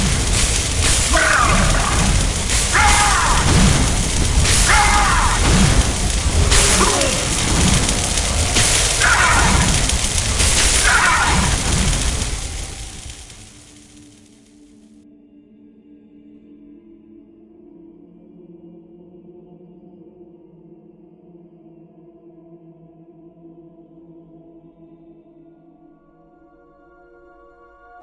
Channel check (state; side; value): identical; both; correlation 1.00